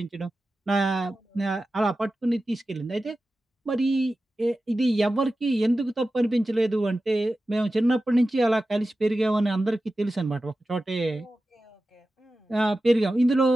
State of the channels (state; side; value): normal; both; correlation 0.94